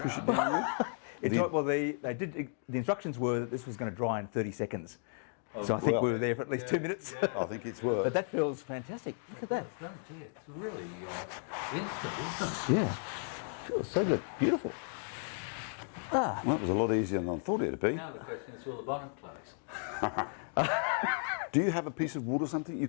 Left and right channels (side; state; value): right; silent; 55 dB below the other